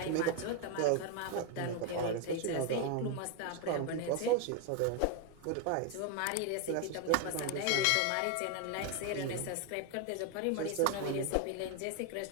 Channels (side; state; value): both; different; correlation 0.01